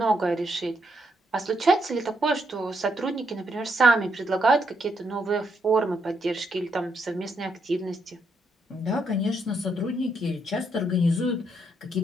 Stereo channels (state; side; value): normal; both; correlation 0.77